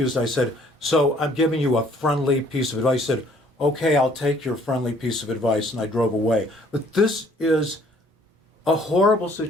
I said, so I'm giving you a friendly piece of advice. He said, okay, I'll take your friendly piece of advice. And I drove away. But this is a horrible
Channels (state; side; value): normal; both; correlation 0.60